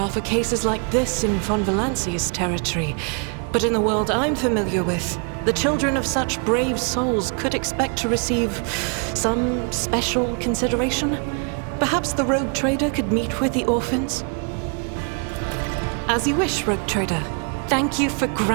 for cases like this in Von Valancia's territory, but in the world I'm familiar with, the children of such brave souls could expect to receive some special consideration. Perhaps the Rogue Trader could meet with the orphans? As you wish, Rogue Trader. Thank you for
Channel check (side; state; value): left; quieter; 39.0 dB